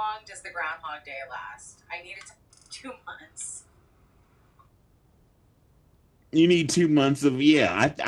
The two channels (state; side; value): identical; both; correlation 1.00